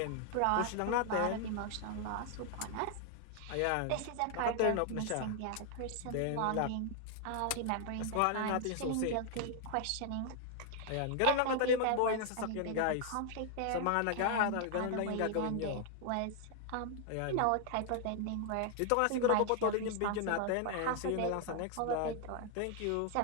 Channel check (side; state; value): both; different; correlation 0.00